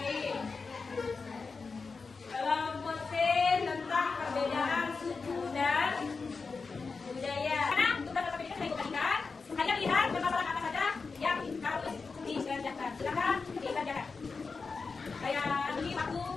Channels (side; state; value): right; quieter; 4.6 dB